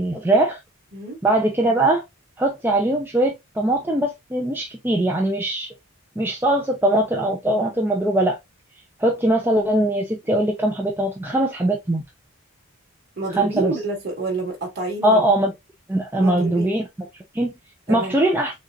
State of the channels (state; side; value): normal; both; correlation 0.52